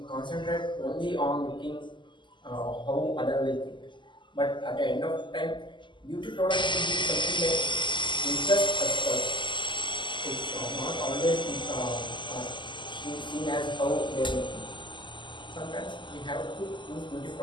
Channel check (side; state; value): right; late; 0.23 ms